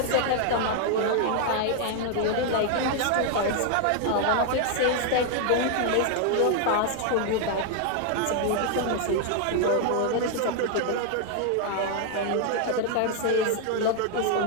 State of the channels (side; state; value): both; different; correlation 0.00